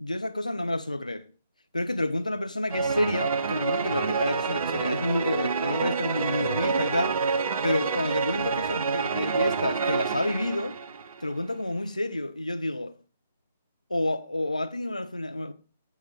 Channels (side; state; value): both; inverted; correlation -0.74